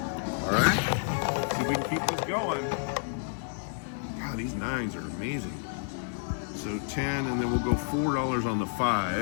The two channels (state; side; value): silent; right; digital silence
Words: All right, see if we can keep this going. God, these 9s are amazing. So 10, and then we'll go $4 on the